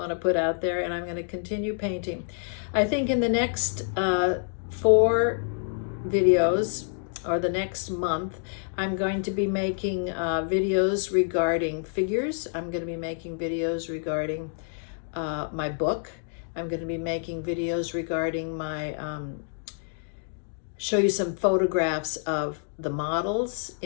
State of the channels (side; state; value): right; silent; digital silence